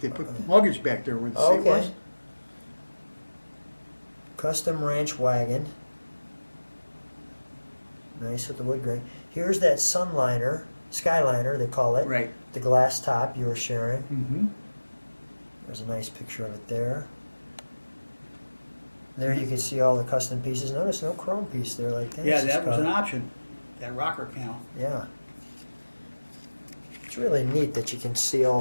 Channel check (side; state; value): both; inverted; correlation -1.00